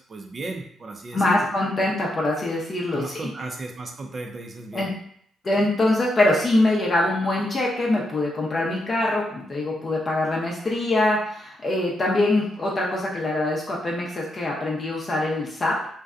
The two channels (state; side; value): normal; both; correlation 0.82